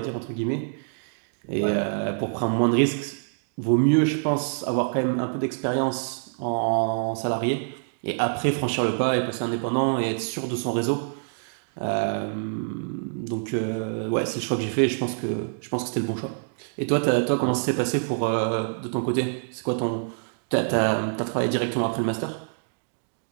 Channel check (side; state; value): left; silent; digital silence